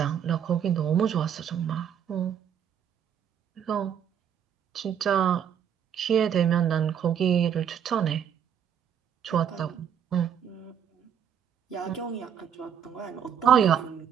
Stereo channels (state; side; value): quieter; left; 8.6 dB